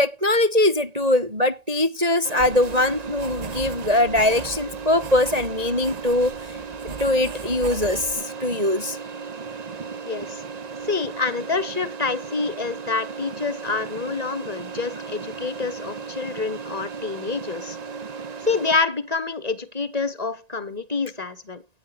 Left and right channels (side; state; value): left; late; 1.9 ms